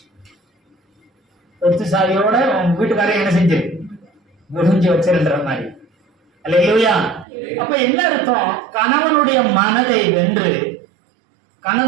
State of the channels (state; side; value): drops out; left; at 7.2 s